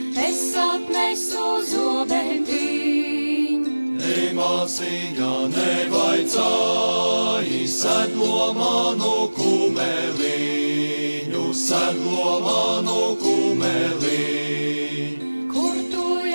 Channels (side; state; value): both; inverted; correlation -1.00